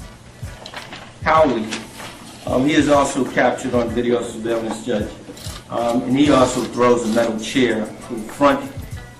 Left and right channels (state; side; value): identical; both; correlation 1.00